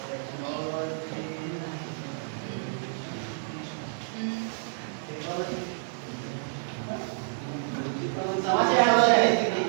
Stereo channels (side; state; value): left; silent; 58 dB below the other